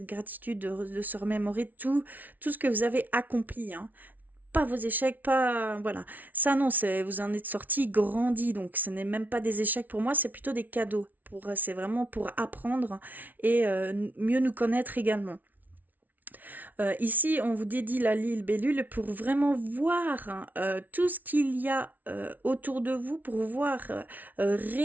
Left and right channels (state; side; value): late; left; 0.080 ms